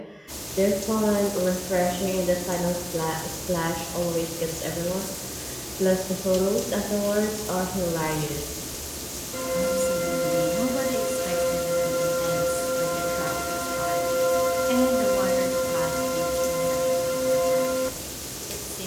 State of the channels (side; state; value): both; identical; correlation 1.00